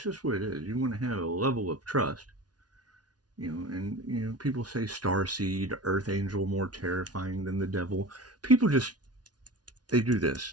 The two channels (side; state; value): left; late; 0.69 ms